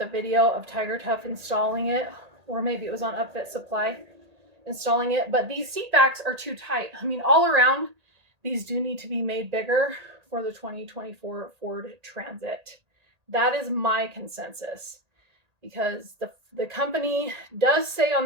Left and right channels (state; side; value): late; left; 1.8 ms